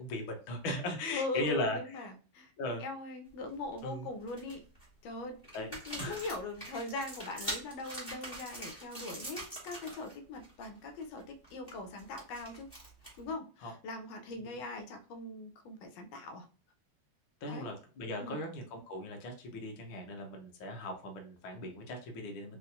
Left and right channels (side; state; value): right; late; 2.6 ms